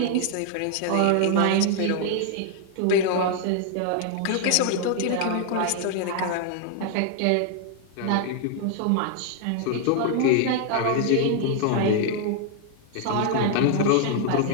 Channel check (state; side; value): different; both; correlation 0.00